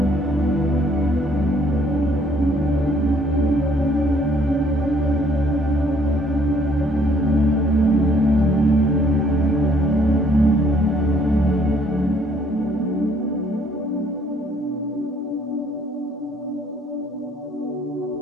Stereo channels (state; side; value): normal; both; correlation 0.63